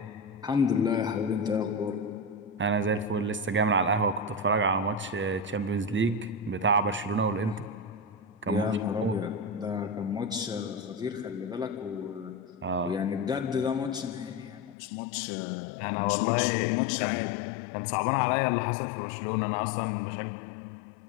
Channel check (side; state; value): right; drops out; at 14.8 s